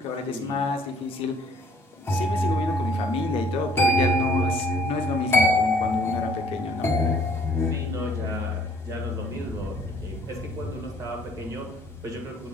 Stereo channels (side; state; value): both; normal; correlation 0.61